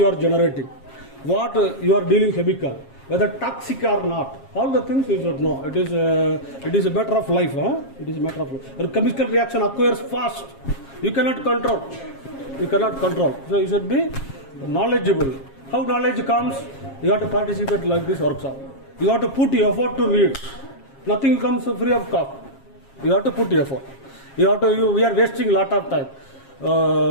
are generating, what you are dealing chemical, whether toxic or not. All the things you should know. It is a matter of life. It is a matter of life. A chemical reaction occurs fast. You cannot control. You cannot control. So you should be knowledgeable. How knowledge comes? You have to participate like this workshop. You have to put effort to read. Nothing comes free of cost. You have to put effort. We are wasting a lot of time.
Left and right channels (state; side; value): late; right; 7.4 ms